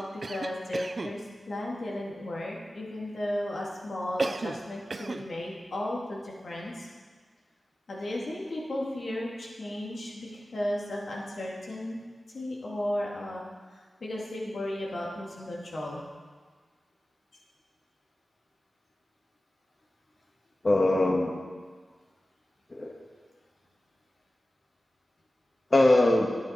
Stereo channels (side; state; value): both; normal; correlation 0.95